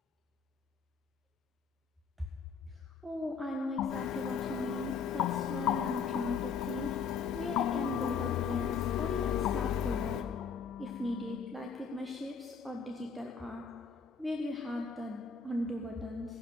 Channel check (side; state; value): right; quieter; 5.8 dB